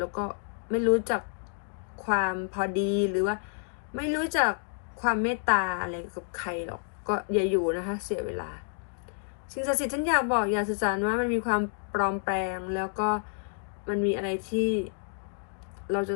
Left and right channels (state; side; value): silent; right; 56 dB below the other